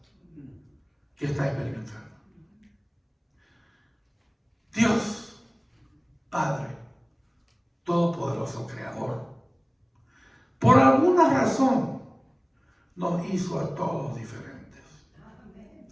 que está experimentando. Dios, Padre Todopoderoso, Creador, por alguna razón nos hizo a todos diferentes.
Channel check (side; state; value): both; identical; correlation 1.00